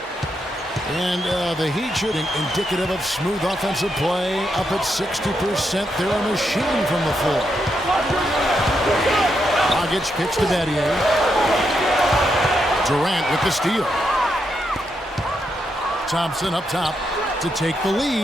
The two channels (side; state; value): both; normal; correlation 0.81